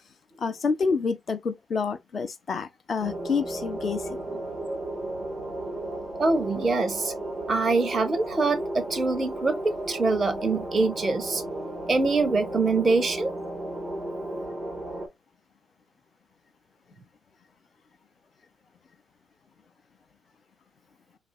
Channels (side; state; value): both; normal; correlation 0.81